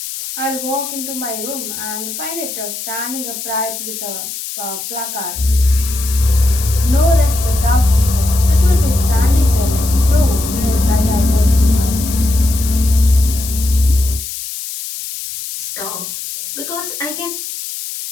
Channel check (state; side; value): noise; left; hiss, 8 dB below the sound